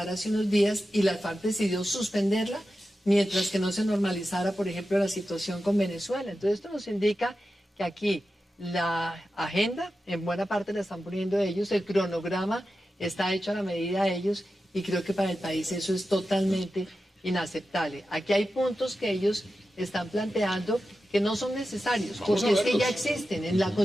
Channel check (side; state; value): both; normal; correlation 0.92